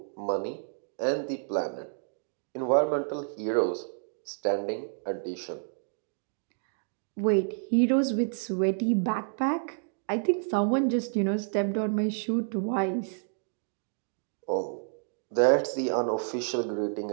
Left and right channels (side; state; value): left; silent; digital silence